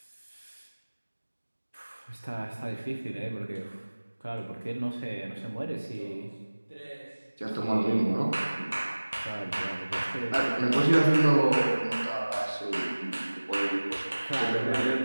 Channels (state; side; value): inverted; both; correlation -1.00